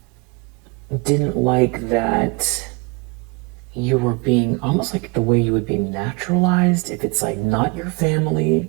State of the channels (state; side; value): quieter; left; 28.7 dB